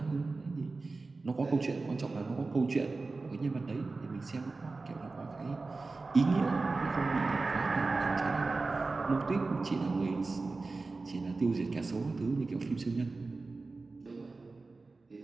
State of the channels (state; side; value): quieter; left; 3.7 dB